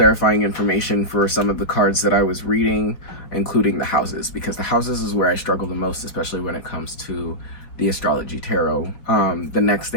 information for some of the cards that I was reading, including the houses, because the houses is where I struggle the most, especially when it comes to the astrology tarot. The next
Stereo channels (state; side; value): late; right; 5.0 ms